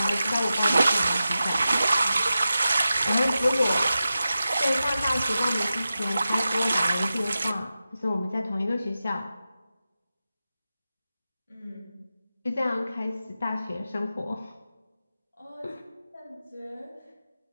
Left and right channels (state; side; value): inverted; both; correlation -0.92